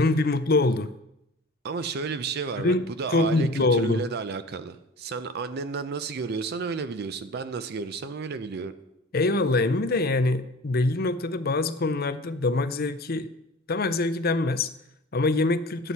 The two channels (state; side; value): normal; both; correlation 0.40